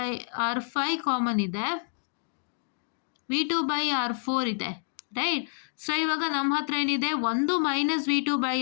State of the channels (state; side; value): silent; right; digital silence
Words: ಕಾಮನ್ ಇದೆ, V2/R4 ಇದೆ, ರೈಟ್? ಸೊ ಇವಾಗ ನಮ್ಮ ಹತ್ರ ಏನಿದೆ, ಒಂದು